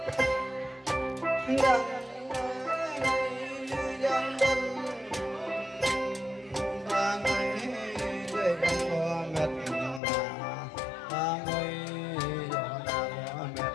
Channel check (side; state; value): right; drops out; at 10.0 s